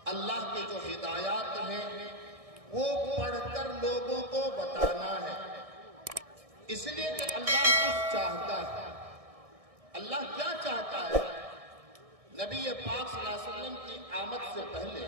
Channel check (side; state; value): left; late; 1.6 ms